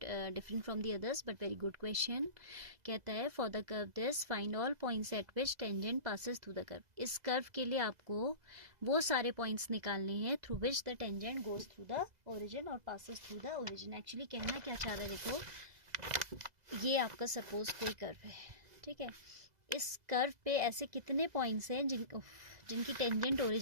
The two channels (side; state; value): left; late; 2.0 ms